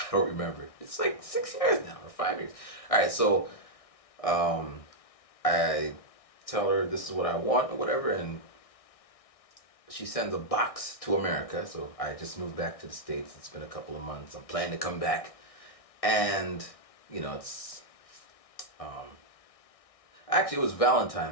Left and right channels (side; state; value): right; late; 1.6 ms